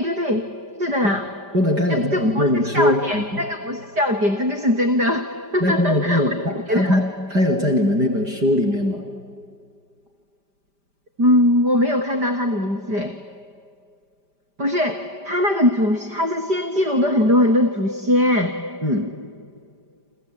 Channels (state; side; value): late; left; 5.0 ms